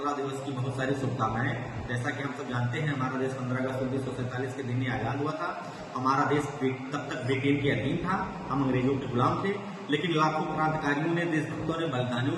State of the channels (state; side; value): identical; both; correlation 1.00